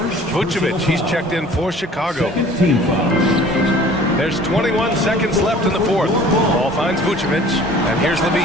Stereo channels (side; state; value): both; normal; correlation 0.49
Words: he's checked in for Chicago. There's 21 seconds left in the fourth. Ball finds Vucevic, and here's